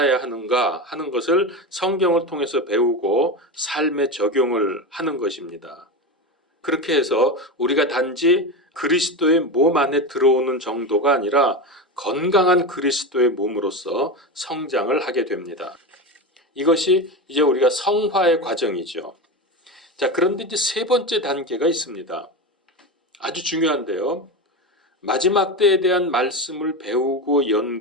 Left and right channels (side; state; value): both; normal; correlation 0.20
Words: 하는가 하는 것을 성경을 통해서 배우고 삶에 적용을 하는 것입니다. 그렇게 해서 우리가 단지 그리스도의 몸 안에 들어오는 정도가 아니라 건강한 그리스도의 몸으로서 성장을 하게 됩니다. 이것이 이제 우리가 성화의 과정이죠. 자, 그런데 이제 세 번째 단계가 있습니다. 아주 중요한데요. 마지막 때에 대한 말씀을 배우고